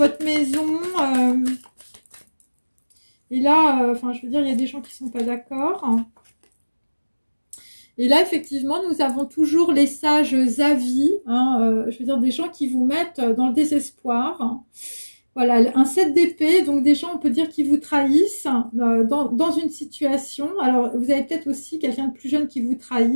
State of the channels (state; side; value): inverted; both; correlation -1.00